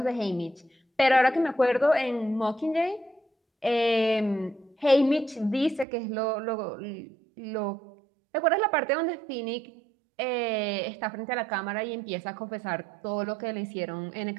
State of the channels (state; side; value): drops out; left; at 5.9 s